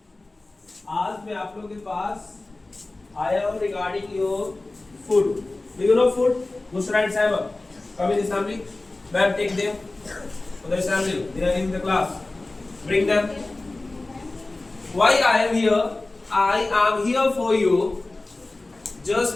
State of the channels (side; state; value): right; quieter; 3.0 dB